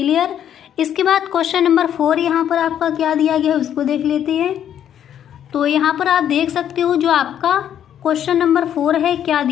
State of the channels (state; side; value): quieter; right; 9.9 dB